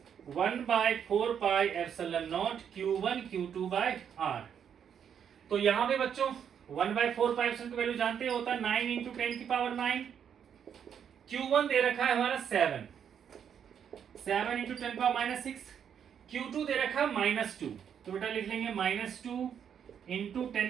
1/4πε0 Q1 Q2/R। तो यहां पे बच्चों 1/4π की वैल्यू जानते होता है 9 इंटू 10 की पावर 9। Q1 दे रखा है हमारा 7 इंटू 10 की पावर -6। Q2 दे रखा है -2, तो बेटा लिख लेंगे -2 इंटू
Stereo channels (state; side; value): quieter; left; 8.2 dB